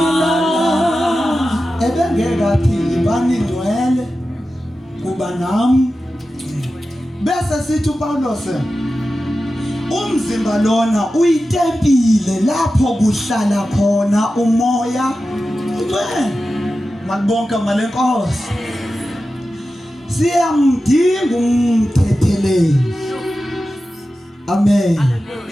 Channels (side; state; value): both; normal; correlation 0.93